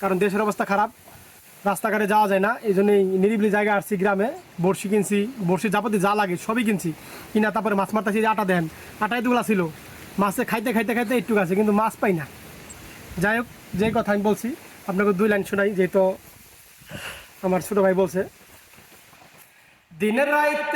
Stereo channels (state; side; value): identical; both; correlation 1.00